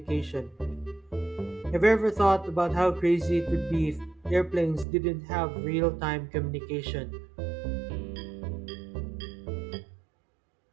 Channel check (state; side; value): drops out; left; at 4.9 s